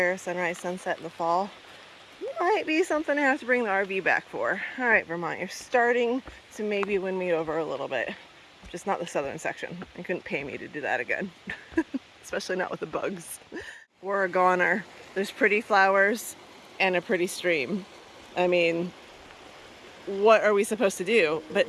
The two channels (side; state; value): both; identical; correlation 1.00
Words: sunrise, sunset in the fall. Might be something I have to bring the RV back for. All right, Vermont, you're starting to maybe win me over a little bit. Just not the southern section. You couldn't pay me to do that again. Especially not with the bugs. We're a goner. There's pretty flowers and a pretty stream. I mean, what are we supposed to do